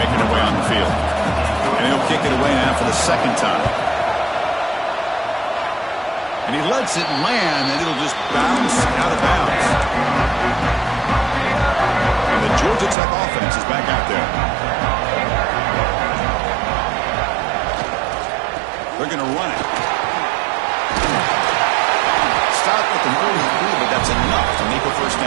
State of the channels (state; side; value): drops out; left; at 13.0 s